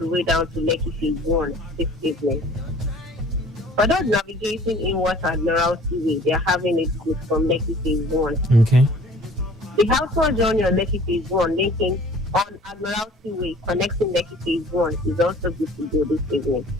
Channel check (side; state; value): both; normal; correlation 0.50